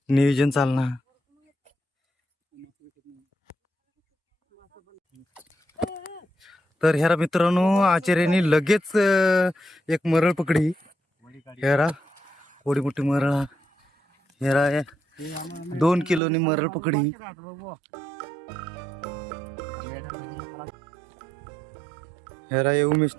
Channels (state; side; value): drops out; left; at 16.2 s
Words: नियोजन चालणार. तर हेरा मित्रांनो आचार्याने लगेच एक मरळ पकडी. हेरा थोडी मोठी मरळ हेरा 2 किलोनी मरळ पकडी. हेरा ये